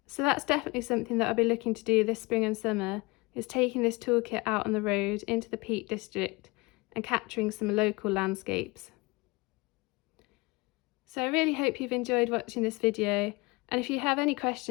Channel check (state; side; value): quieter; right; 24.8 dB